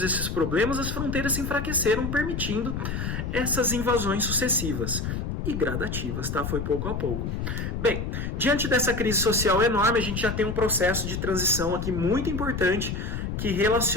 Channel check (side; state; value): left; noise; rumble, 3 dB below the sound